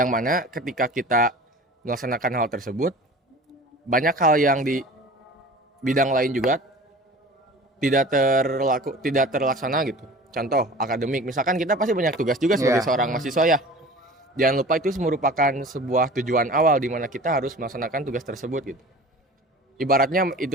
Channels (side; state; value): both; normal; correlation 0.41